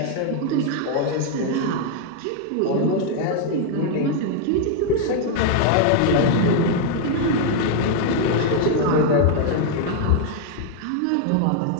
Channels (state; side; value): different; both; correlation 0.00